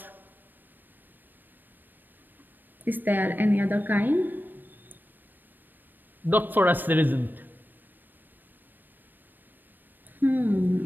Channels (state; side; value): late; left; 0.092 ms